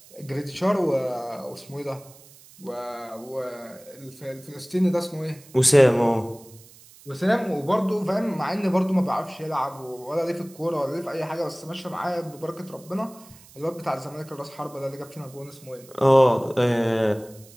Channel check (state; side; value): noise; right; hiss, 23 dB below the sound